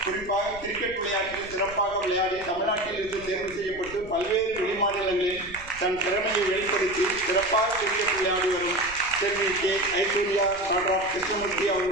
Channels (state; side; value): noise; right; rumble, 18 dB below the sound